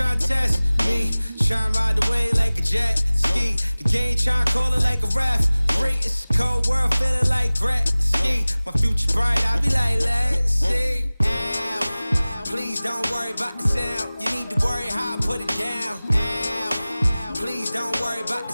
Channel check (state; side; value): inverted; both; correlation -0.99